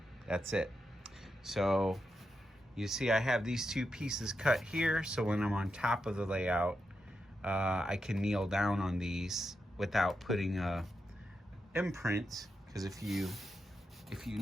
That's it. So you see I have these 2 pieces cut here, so when I'm on top of the layout, I can kneel down on these without putting a imprint. Because if you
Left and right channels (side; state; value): both; normal; correlation 0.86